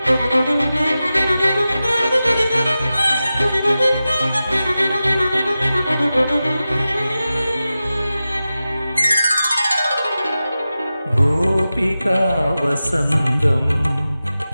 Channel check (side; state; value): both; inverted; correlation -0.94